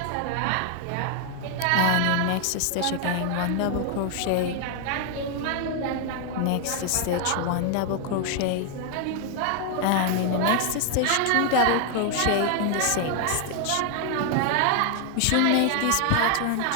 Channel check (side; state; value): both; different; correlation 0.00